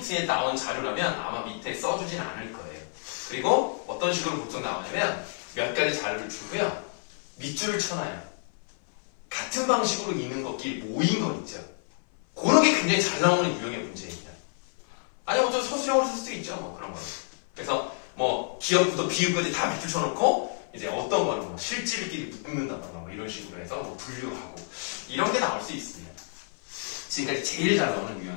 나온 자료라면 아마 밑에 써주진 않을 거예요. 그리고 어떤 식으로 보통 나오냐면 몇 가지 자료를 주고요. 밑줄을 쳐놔요. 같은 방식으로 있는 것끼리 모인 거 있죠. 그런 게 굉장히 잘 나오는 유형의 문제입니다. 아니 어쩌면 서술형으로 쓸 수도 있죠. 뭐 그런 거. 그래서 뭐 기역부터 비읍까지 다 밑줄 쳐놓고 이제 어떤 거는 뭐 실질끼리 묶는다던가 뭐 이런 식으로 해서 뭐 분류하고 이런 게 나올 수 있습니다. 지금까지 제일 잘 나오는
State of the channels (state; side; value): silent; right; 56 dB below the other